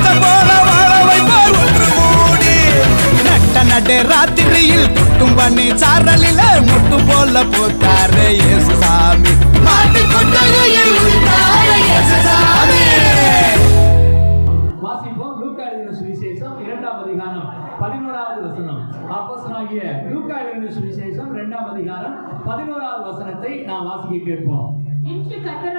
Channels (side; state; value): both; inverted; correlation -1.00